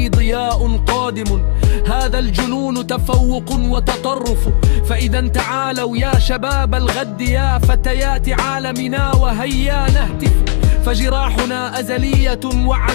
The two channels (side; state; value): right; silent; digital silence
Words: ضياء قادم، هذا الجنون تفوق وتطرف. فإذا تعالوا يا شباب الغد، يا فتيات عالمنا وهيا نهتف. فجراحنا أزلية